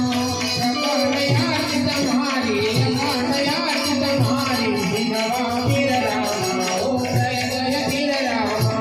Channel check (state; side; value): identical; both; correlation 1.00